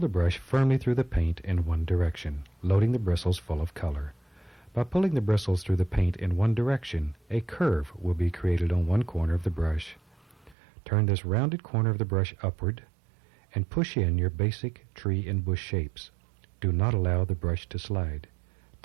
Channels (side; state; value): left; drops out; at 10.6 s